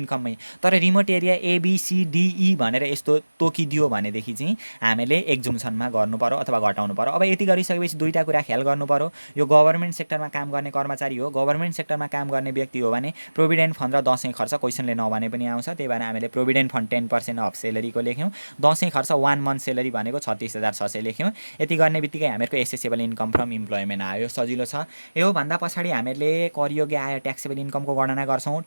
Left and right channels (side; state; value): both; inverted; correlation -1.00